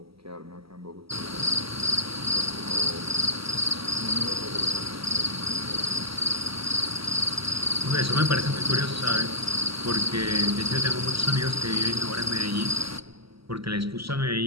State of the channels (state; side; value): late; left; 0.75 ms